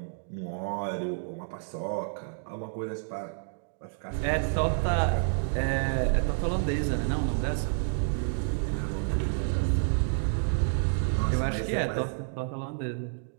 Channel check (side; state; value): left; silent; digital silence